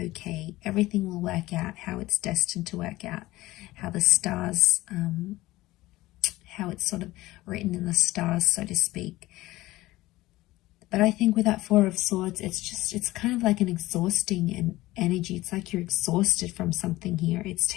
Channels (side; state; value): right; quieter; 17.9 dB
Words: Everything will work out how it's destined to work out. How the stars, how it's sort of written in the stars, so to speak. But I think with that Four of Swords, it's kind of like an exhausting energy. It's like you're exhausted from something here. It's